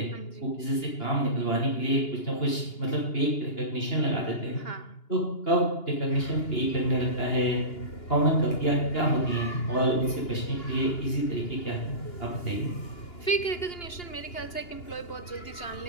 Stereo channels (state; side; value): late; right; 2.8 ms